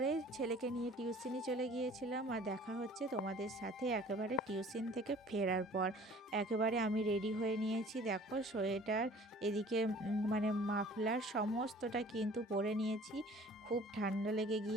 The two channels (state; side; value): normal; both; correlation 0.50